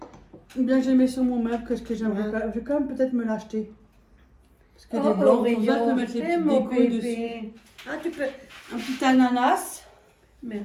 Ou bien j'ai mis sur mon meuble, que ce que j'aimerais. Ouais. Je vais quand même peut-être me l'acheter. Parce que Oh, des blancs, Oreo, comme ça, je peux mettre les c'est petites mon décos bébé. dessus. Ah, tu peux. Un petit ananas.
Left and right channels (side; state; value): both; identical; correlation 1.00